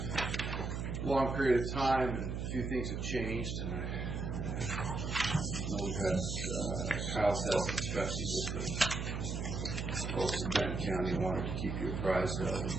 a long period of time, and a few things have changed. And we've had Kyle's had some discussions with the folks in Benton County and wanted to keep you apprised of it.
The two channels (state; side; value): noise; right; hum, 3 dB below the sound